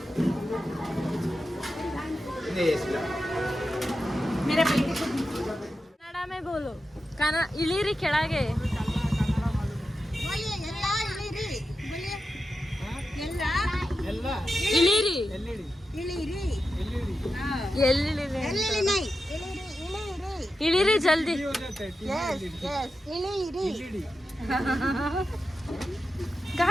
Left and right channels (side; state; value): both; normal; correlation 0.90